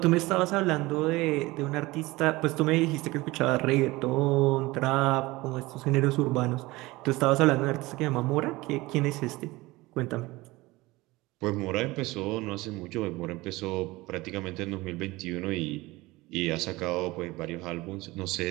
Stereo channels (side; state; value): left; quieter; 20.7 dB